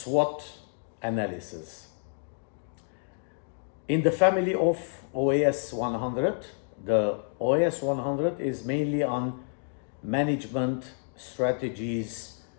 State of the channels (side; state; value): right; silent; 58 dB below the other